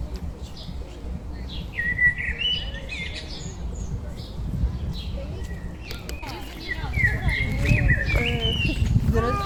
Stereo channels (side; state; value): both; identical; correlation 1.00